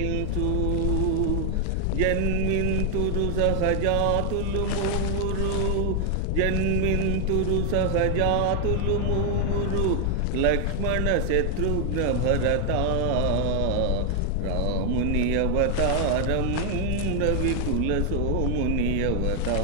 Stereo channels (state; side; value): different; both; correlation 0.00